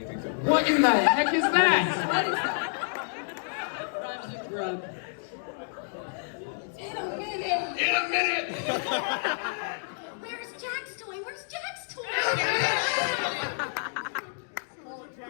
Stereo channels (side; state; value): right; silent; digital silence